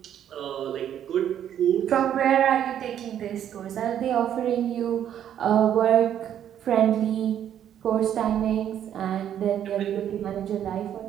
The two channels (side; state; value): left; quieter; 10.0 dB